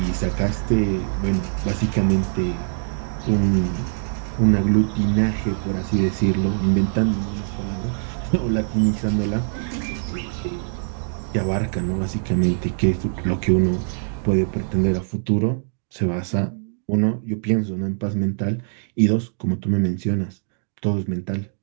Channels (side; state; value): left; silent; digital silence